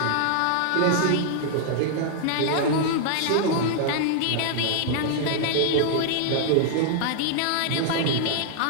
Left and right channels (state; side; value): different; both; correlation -0.01